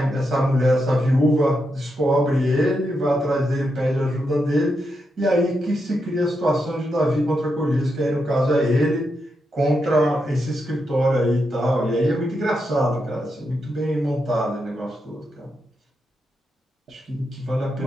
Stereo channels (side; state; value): both; normal; correlation 0.84